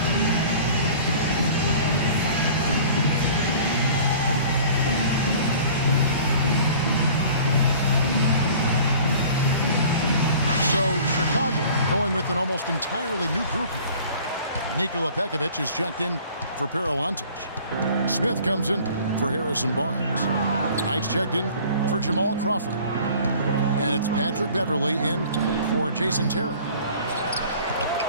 Going with an almost entirely new group here. Nikola Pekovic is checked in for Paralantic. Smith comes in for Harrison Barnes. Knight's checked in for Jamal Crawford. And it's Patrick Beverley in for Jason Terry.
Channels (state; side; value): inverted; both; correlation -0.47